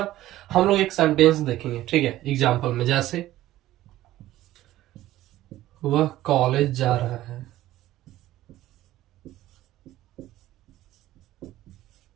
हम लोग एक सेंटेंस देखेंगे, ठीक है, एग्जाम्पल में, जैसे वह कॉलेज जा रहा है,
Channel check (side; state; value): left; quieter; 14.9 dB